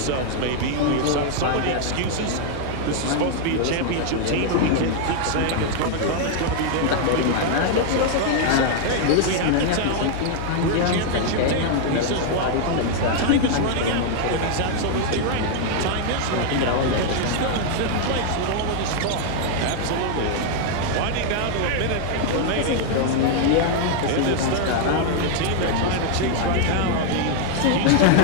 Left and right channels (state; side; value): different; both; correlation 0.00